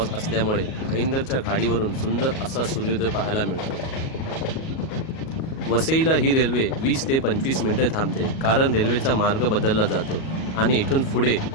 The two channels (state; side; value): late; right; 37 ms